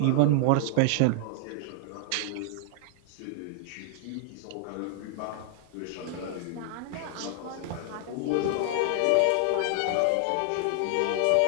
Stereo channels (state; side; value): different; both; correlation -0.01